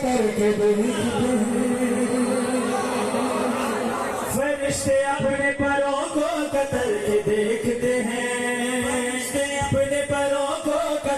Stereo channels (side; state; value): both; identical; correlation 1.00